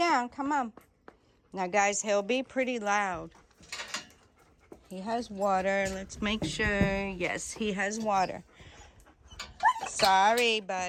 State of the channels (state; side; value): identical; both; correlation 1.00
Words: come on. Now, guys, he'll be pretty loud. He has water. Let's make sure. Yes, he has water. Sorry,